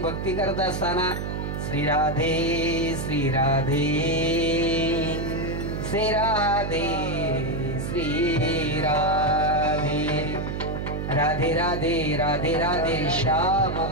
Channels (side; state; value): right; noise; hum, 4 dB below the sound